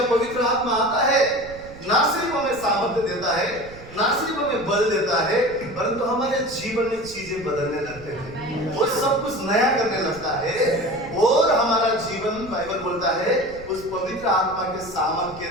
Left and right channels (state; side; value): noise; right; rumble, 18 dB below the sound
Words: पवित्र आत्मा आता है ना सिर्फ हमें सामर्थ्य देता है, ना सिर्फ हमें बल देता है, परंतु हमारे जीवन में चीजें बदलने लगते हैं, वो सब कुछ नया करने लगता है और हमारा जीवन बाइबल बोलता है उस पवित्र आत्मा के सामर्थ्य